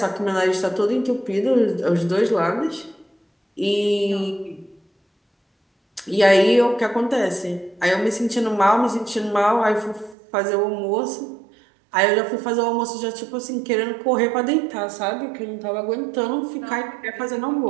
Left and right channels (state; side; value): drops out; left; at 10.2 s